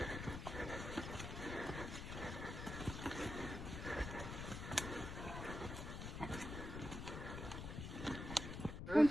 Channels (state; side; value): noise; left; rumble, 6 dB below the sound